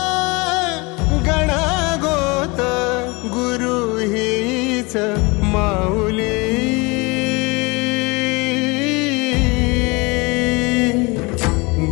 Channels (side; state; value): right; quieter; 26.5 dB